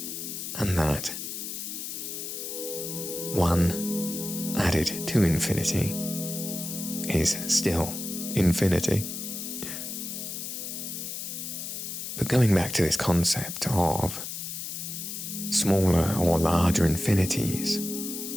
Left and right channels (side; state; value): left; noise; hiss, 6 dB below the sound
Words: And that one added to infinity is still infinity. But going back to this concept of smaller or larger infinities,